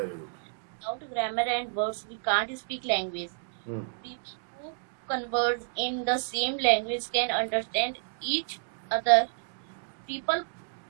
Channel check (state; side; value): silent; left; digital silence